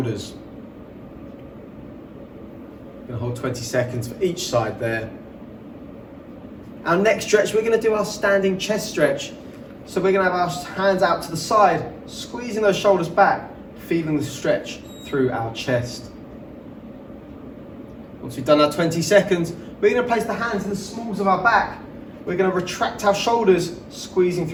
We're going to hold 20 seconds for each side there. Our next stretch, we're going to do our standing chest stretch. So we're going to have our hands out to the side, squeezing those shoulders back, feeling the stretch through our chest. Once we've done our 20 seconds, we're going to place the hands in the smalls of our back. We're going to retract our shoulders, squeezing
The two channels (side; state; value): both; identical; correlation 1.00